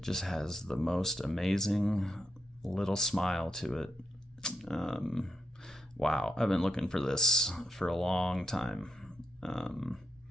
just has the most amazing little smile to it. Wow, I've been looking for this for a long time.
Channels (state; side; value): normal; both; correlation 0.83